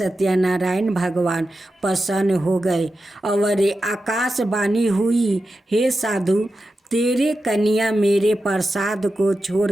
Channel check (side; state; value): both; normal; correlation 0.91